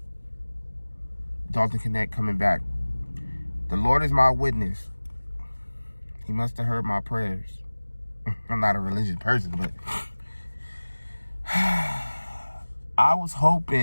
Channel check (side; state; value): both; inverted; correlation -1.00